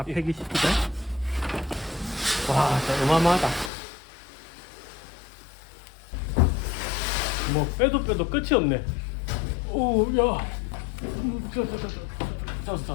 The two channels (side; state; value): right; drops out; at 3.7 s